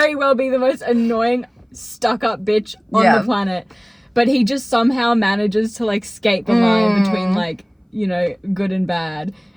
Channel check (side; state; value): both; identical; correlation 1.00